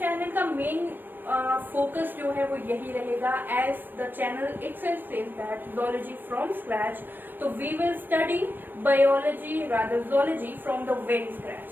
का मेन फोकस जो है वो यही रहेगा, as the channel itself says that zoology from scratch. तो we will study biology, rather zoology from the very scratch,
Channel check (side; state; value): left; late; 0.093 ms